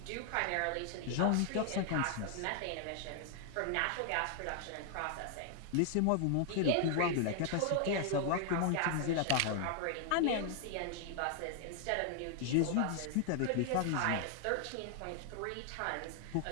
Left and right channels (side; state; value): both; different; correlation 0.00